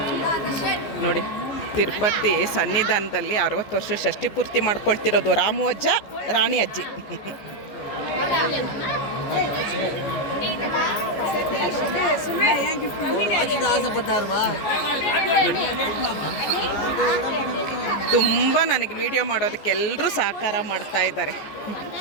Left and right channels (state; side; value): late; right; 14 ms